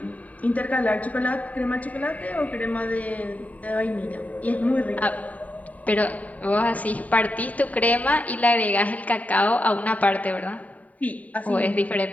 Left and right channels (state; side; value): late; right; 0.071 ms